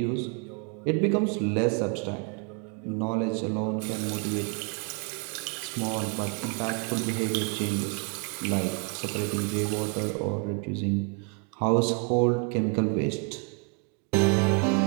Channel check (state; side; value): quieter; left; 37.7 dB